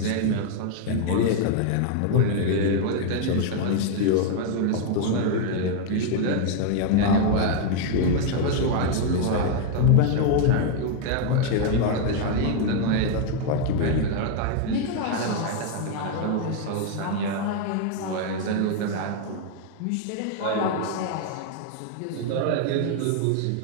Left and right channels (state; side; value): different; both; correlation 0.00